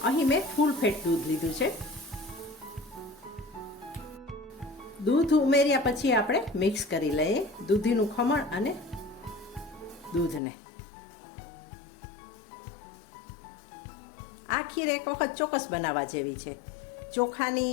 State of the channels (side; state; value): right; drops out; at 10.4 s